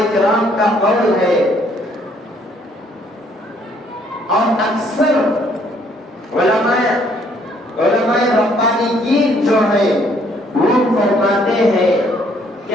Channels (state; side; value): normal; both; correlation 0.65